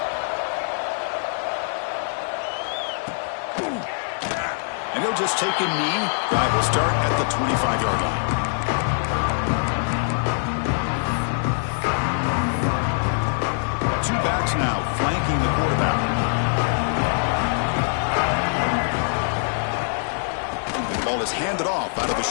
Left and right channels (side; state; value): right; silent; digital silence